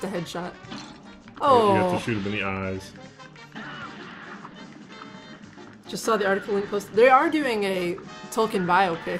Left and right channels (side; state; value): both; identical; correlation 1.00